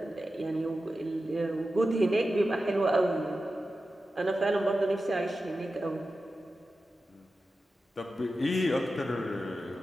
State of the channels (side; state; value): both; normal; correlation 0.92